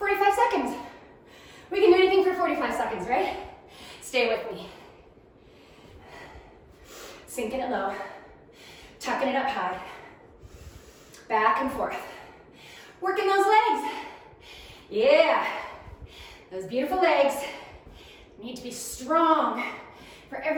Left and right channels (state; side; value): identical; both; correlation 1.00